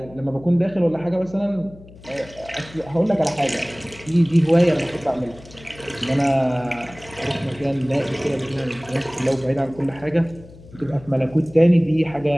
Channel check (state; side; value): noise; left; hum, 20 dB below the sound